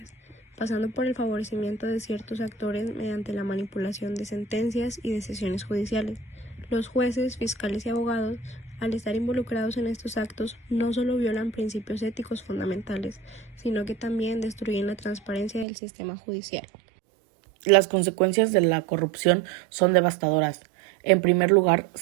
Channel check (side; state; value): left; drops out; at 15.7 s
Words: pasando por el favorecimiento de ciertos actores mediante la manipulación de sentencias y decisiones judiciales. Los jueces, fiscales y abogados, al estar involucrados en estos actos, no solo violan principios éticos fundamentales, sino que también destruyen la transparencia del sistema judicial. Las consecuencias de la corrupción son devastadoras. En primer lugar,